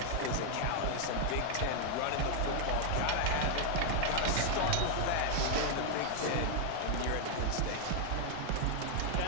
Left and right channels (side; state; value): both; different; correlation 0.00